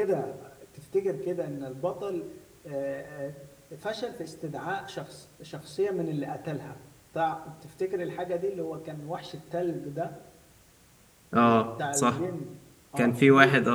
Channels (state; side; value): identical; both; correlation 1.00